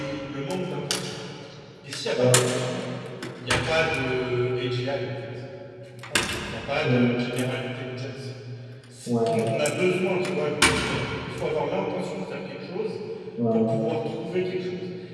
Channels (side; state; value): both; identical; correlation 1.00